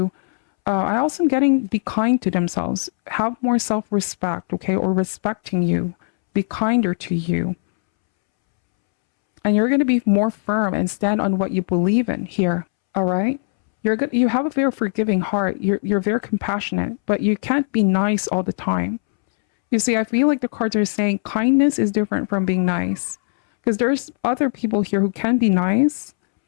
I also am getting be kind to themselves, have more self-respect, okay, or respecting you, be kinder to you. And you're going to be more firm and stand on what you believe in here. All right. You're good. You have a very forgiving heart. You're very compassionate, but you can't be nice all the time. You see, I feel like the cards are saying kindness is different from being nice, because there's other people here who can be nice,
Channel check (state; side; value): silent; right; 65 dB below the other